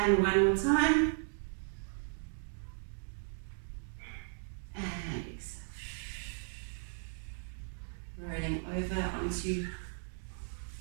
one more time, and exhale, rolling over onto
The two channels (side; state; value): left; silent; digital silence